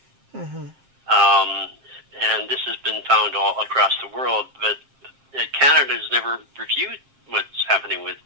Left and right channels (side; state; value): left; late; 7.5 ms